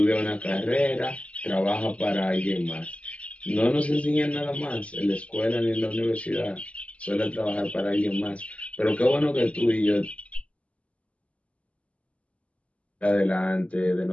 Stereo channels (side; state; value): right; late; 0.063 ms